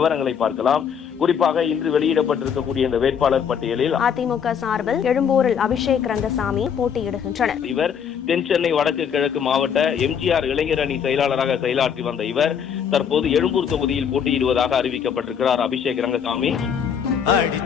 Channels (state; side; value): quieter; right; 7.6 dB